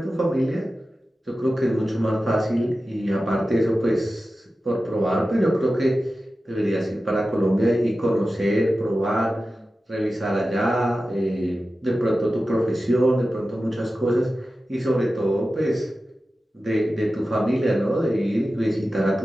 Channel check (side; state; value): both; normal; correlation 0.94